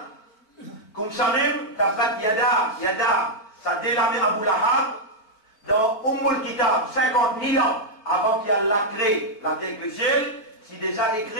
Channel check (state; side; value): late; right; 4.5 ms